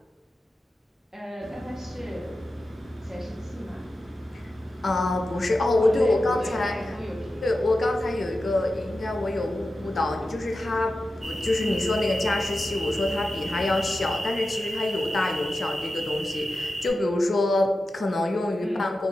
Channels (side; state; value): both; normal; correlation 0.92